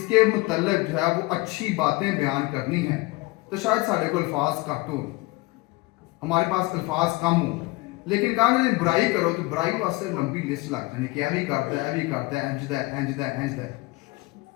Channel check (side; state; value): right; quieter; 22.5 dB